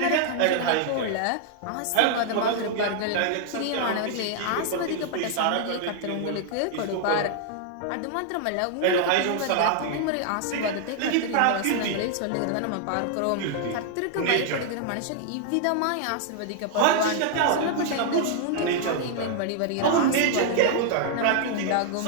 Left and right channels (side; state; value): both; different; correlation 0.00